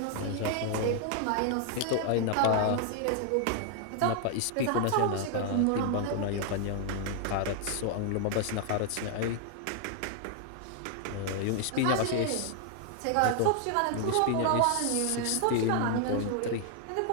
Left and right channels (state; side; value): different; both; correlation 0.00